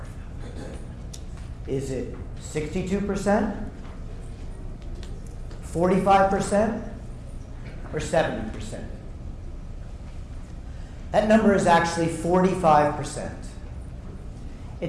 Is it 62%, 45%, or 70%? That number is actually 45%.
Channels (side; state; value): both; identical; correlation 1.00